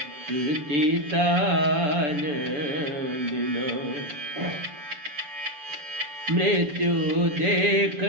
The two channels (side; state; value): left; late; 6.9 ms